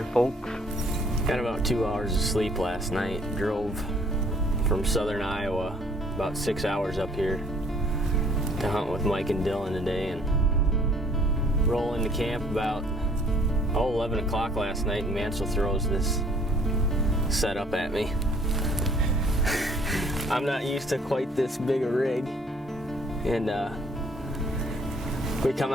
folks. Got about 2 hours of sleep last night. Drove from southern Iowa about 6 hours up here to hunt with Mike and Dylan today, and roll into camp about 11 o'clock last night, and Mansell throws this setup at me. I'm not used to quite this big a rig, and we come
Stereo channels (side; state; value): both; normal; correlation 0.59